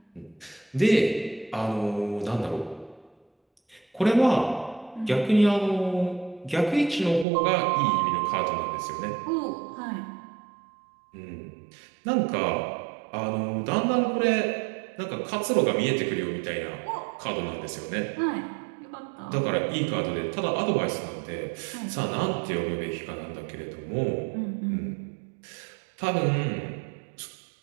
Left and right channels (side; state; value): left; drops out; at 7.2 s